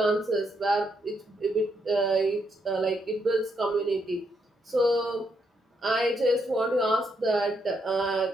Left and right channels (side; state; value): both; normal; correlation 0.77